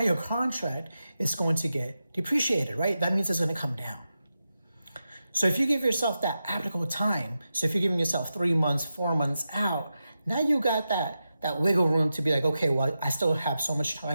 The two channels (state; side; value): inverted; both; correlation -0.90